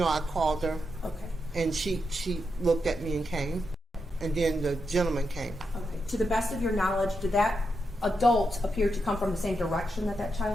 called her. Okay. And she looked at me and came, and then the gentleman came. Okay. To the best of your knowledge, did that adult appear to come from the same direction that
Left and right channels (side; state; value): both; normal; correlation 0.85